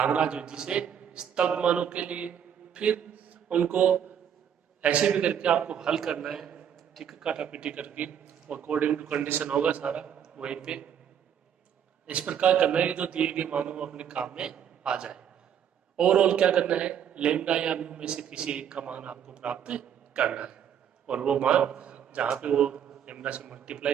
विधि से स्तब्ध मानों के लिए। फिर उनको ऐसे भी करके आपको हल करना है, ठीक है, काटापीटी करके, अकॉर्डिंग टू कंडीशन होगा सारा वहीं पे। इस प्रकार करना है जो दिए गए मानों को अपने काम में आ जाए। ओवरऑल क्या करना है, लेमडा या म्यू में से किसी एक का मान आपको प्राप्त करना है, और वो मान जहाँ पे वो लेमडा से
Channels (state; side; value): quieter; left; 8.8 dB